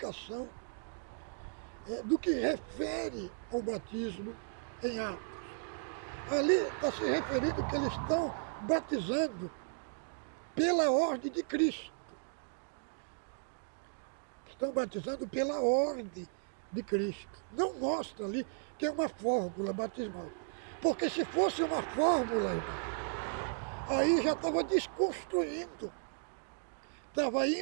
do que refere ao batismo em Atos. Ali está se referindo que eles estão batizando pela ordem de Cristo. Estão batizando pela ordem de Cristo. Não mostra ali que é uma fórmula batismal. Porque se fosse uma fórmula, irmão, aí já estava desconstruindo. Estava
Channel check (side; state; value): left; silent; digital silence